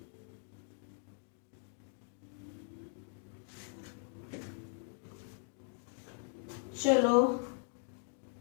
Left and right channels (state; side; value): silent; right; 52 dB below the other